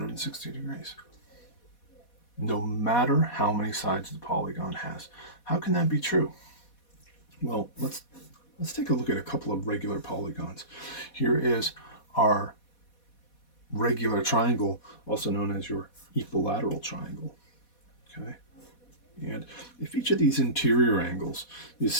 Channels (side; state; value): right; late; 4.2 ms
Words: degrees. No matter how many sides the polygon has. How can that be true? Well, let's take a look at a couple of regular polygons. Here is our regular triangle, also known as your equilateral triangle. Okay? And if each of these interior angles is